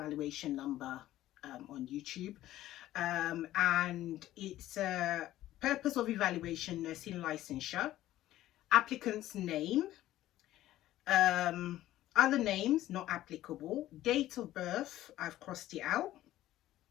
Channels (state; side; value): quieter; right; 14.4 dB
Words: number on YouTube, and it's purpose of evaluation, nursing licensure, applicant's name, other names not applicable, date of birth, I've crossed it out,